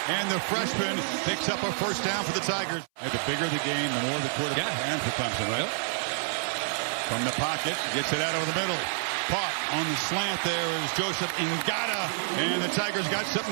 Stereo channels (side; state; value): left; silent; 59 dB below the other